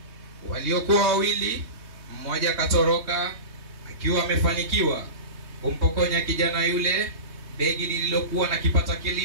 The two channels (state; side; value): late; left; 3.2 ms